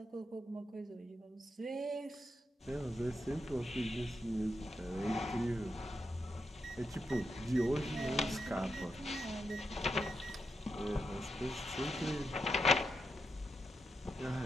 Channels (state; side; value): normal; both; correlation 0.85